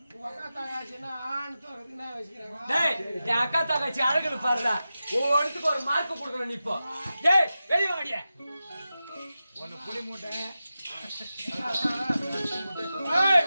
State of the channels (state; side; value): inverted; both; correlation -0.93